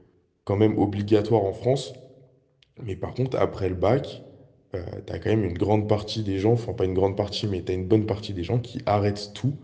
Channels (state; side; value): identical; both; correlation 1.00